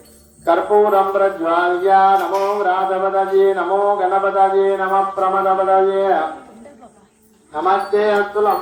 கற்பூரம் பிரஜ்வால்யா நமோ ராஜபதஜே நமோ கணபதஜே நம பிரமதபதஜே नमस्ते अस्तु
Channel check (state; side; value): identical; both; correlation 1.00